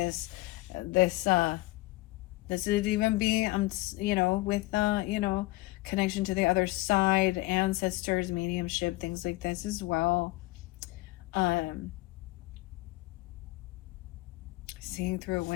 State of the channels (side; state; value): right; quieter; 20.3 dB